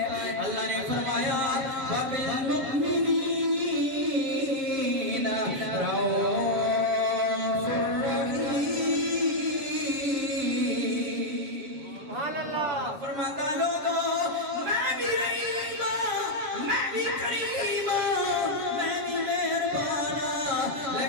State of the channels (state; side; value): late; left; 7.4 ms